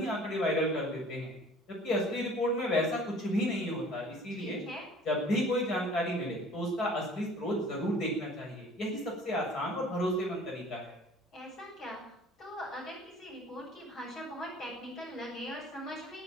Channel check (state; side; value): normal; both; correlation 0.49